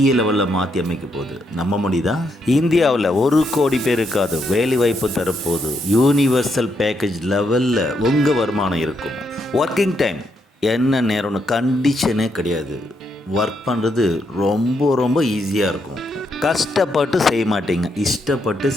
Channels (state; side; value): normal; both; correlation 0.78